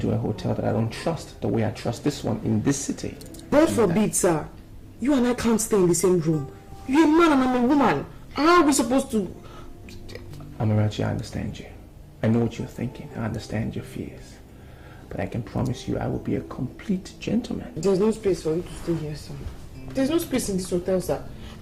a hotel that I don't trust the way I trust this one in this city? God forbid, sir. You and I can't stay in the same room. You're a man and I'm a woman. How are we supposed to... Amarachi, I understand you. I know what you're thinking. I understand your fears. But I can promise you I will be a complete gentleman. There's no space for you to stay here, sir. There's no space in this hotel, sir.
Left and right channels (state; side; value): identical; both; correlation 1.00